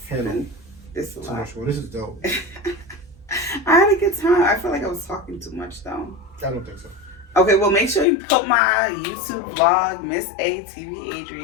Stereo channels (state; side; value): drops out; right; at 8.1 s